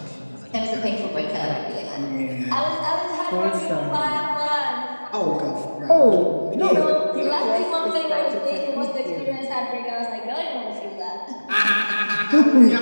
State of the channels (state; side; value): inverted; both; correlation -1.00